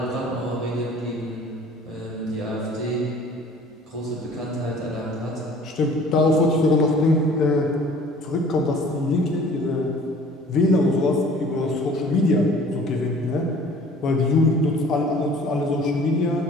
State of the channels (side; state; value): both; normal; correlation 0.50